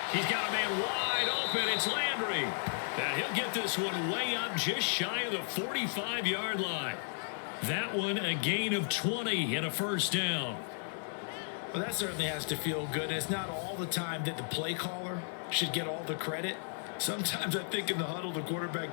He's got a man wide open. It's Landry. And he'll get this one way up just shy of the 45-yard line. That one a gain of 20 and a 1st down. Well, that certainly has to feel good. And it's not all the time that the play caller should get all the credit. Sometimes I think in the huddle, the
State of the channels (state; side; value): silent; right; digital silence